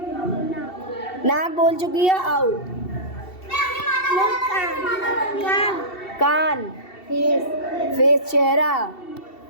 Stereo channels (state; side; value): late; right; 2.7 ms